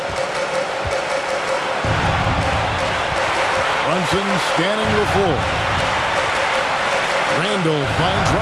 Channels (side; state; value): both; identical; correlation 1.00